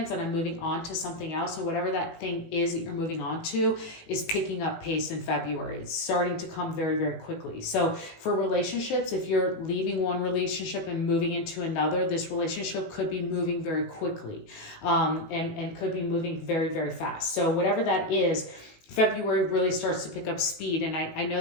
and I'm moving on to something else. So whatever that thing is that you're moving on to is picking up pace in February. It's starting to come very, very quickly. So for relationships, if you're leaving one relationship and moving into another, this relationship could be moving very quickly, and could be moving very, very fast. So whatever that is, February really starts to pick up speed. And I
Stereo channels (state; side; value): late; right; 18 ms